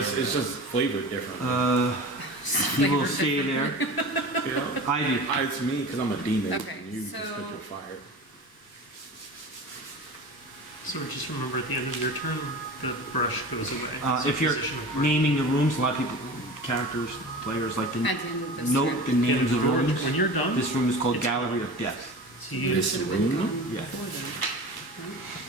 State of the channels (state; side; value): late; right; 1.0 ms